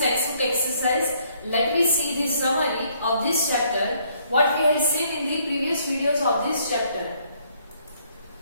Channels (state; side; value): inverted; both; correlation -0.67